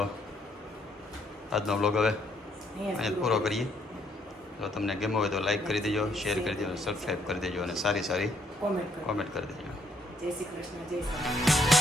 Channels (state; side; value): normal; both; correlation 0.70